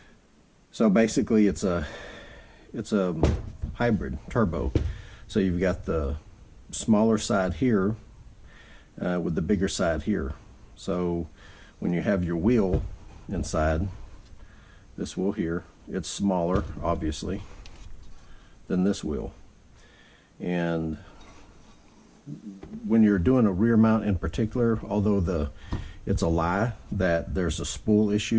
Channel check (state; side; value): identical; both; correlation 1.00